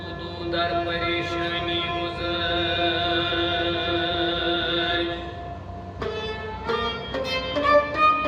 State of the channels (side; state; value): both; identical; correlation 1.00